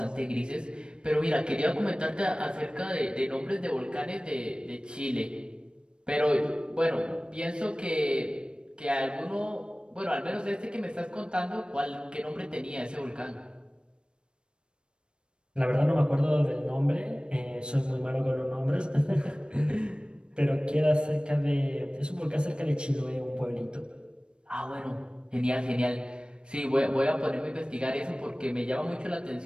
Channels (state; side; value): late; left; 0.054 ms